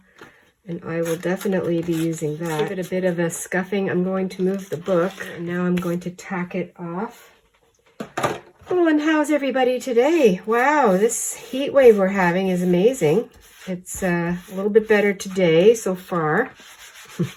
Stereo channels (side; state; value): both; identical; correlation 1.00